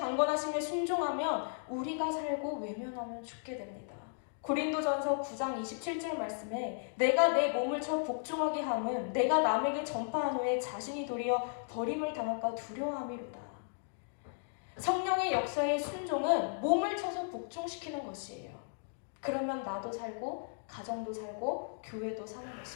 순종하면 우리가 살고 외면하면 죽게 됩니다. 고린도전서 9장 27절 말씀에 내가 내 몸을 쳐 복종하게 함은 내가 남에게 전파한 후에 자신이 도리어 버림을 당할까 두려워함이로다. 성령의 역사의 순종은 몸을 쳐서 복종시키는 것이에요. 그러면 나도 살고 가정도 살고 교회도 사는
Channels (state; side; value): silent; right; digital silence